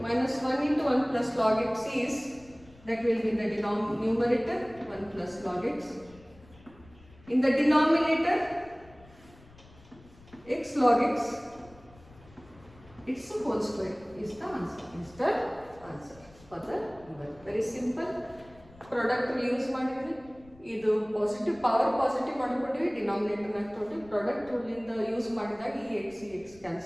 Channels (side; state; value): left; noise; rumble, 24 dB below the sound